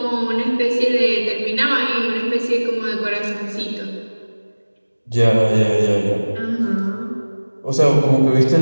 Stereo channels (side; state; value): both; inverted; correlation -1.00